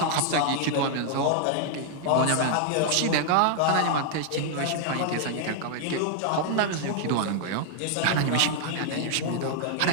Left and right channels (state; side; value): different; both; correlation 0.00